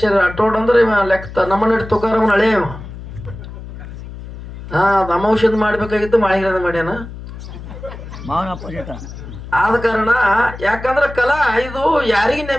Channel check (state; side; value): noise; left; hum, 12 dB below the sound